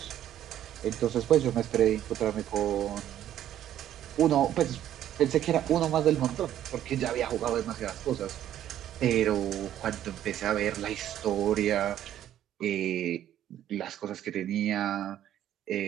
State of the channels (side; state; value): left; quieter; 11.5 dB